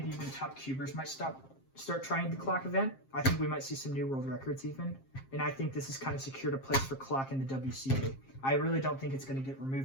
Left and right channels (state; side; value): late; right; 7.5 ms